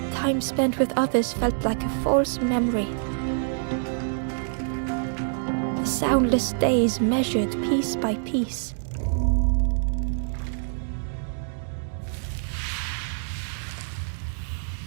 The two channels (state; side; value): silent; left; digital silence